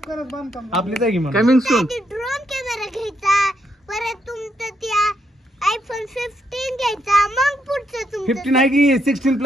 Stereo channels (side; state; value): both; normal; correlation 0.77